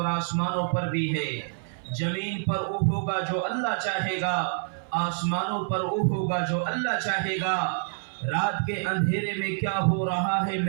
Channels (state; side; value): silent; left; 58 dB below the other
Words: آسمانوں پر بھی ہے۔ زمین پر وہ ہوگا جو اللہ چاہے گا، آسمانوں پر وہ ہوگا جو اللہ چاہے گا۔ رات کے اندھیرے میں کیا ہو رہا ہے